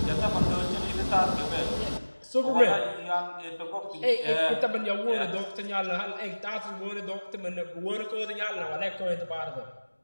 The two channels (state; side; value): inverted; both; correlation -1.00